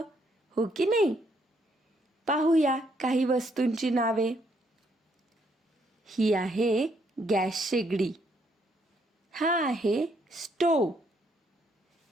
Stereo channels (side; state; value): both; normal; correlation 0.72